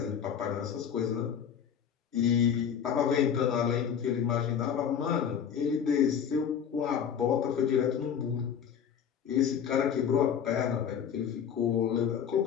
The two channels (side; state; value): right; quieter; 8.0 dB